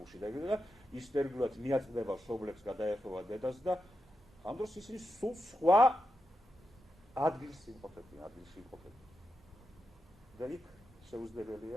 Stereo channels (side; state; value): both; normal; correlation 0.87